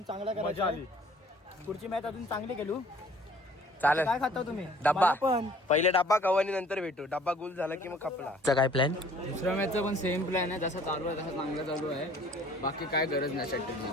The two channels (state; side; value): normal; both; correlation 0.54